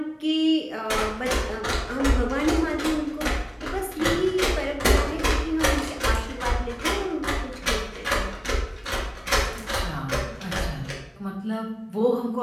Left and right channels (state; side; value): identical; both; correlation 1.00